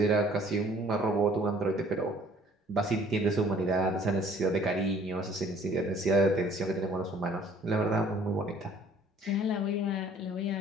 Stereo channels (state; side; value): normal; both; correlation 0.55